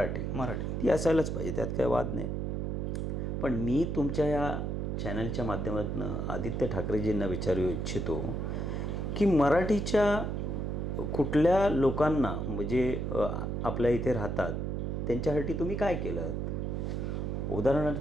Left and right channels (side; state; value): right; noise; hum, 2 dB below the sound